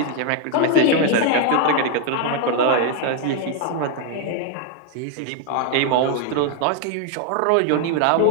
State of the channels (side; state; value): both; different; correlation 0.00